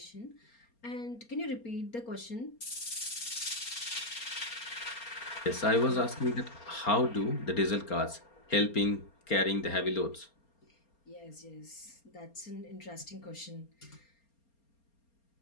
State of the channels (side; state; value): right; late; 4.3 ms